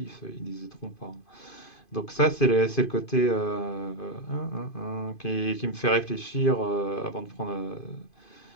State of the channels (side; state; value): right; late; 2.5 ms